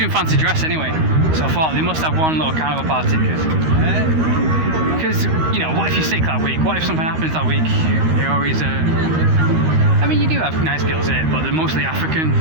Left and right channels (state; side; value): late; left; 13 ms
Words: fancy dress anyway, so I thought they must have one little carnival party, because you know, what if you're sick that week, what if something happens that week, you're always I mean, you do have nice girls here, but they're mostly African